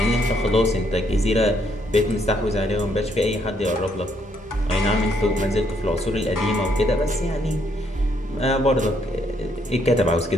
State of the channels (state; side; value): normal; both; correlation 0.72